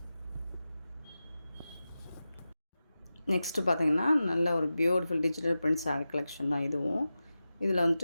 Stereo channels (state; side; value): inverted; both; correlation -0.93